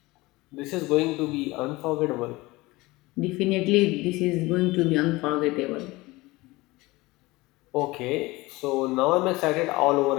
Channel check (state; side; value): quieter; right; 21.1 dB